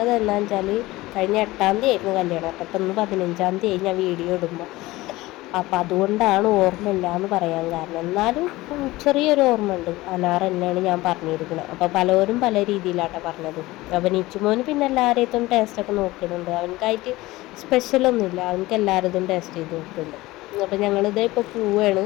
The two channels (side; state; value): right; quieter; 19.1 dB